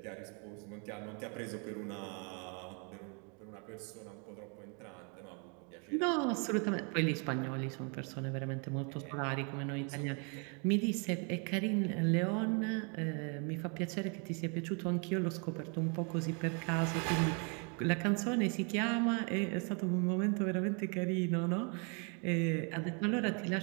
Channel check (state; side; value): quieter; left; 36.4 dB